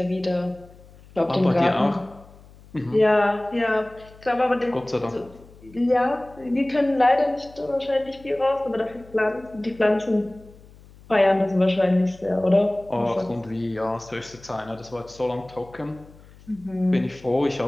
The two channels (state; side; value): noise; left; hum, 23 dB below the sound